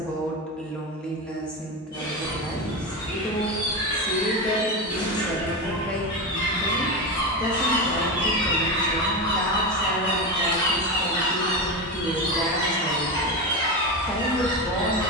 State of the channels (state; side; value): normal; both; correlation 0.18